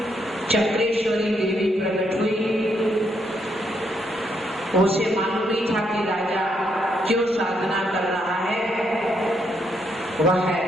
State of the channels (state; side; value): normal; both; correlation 0.76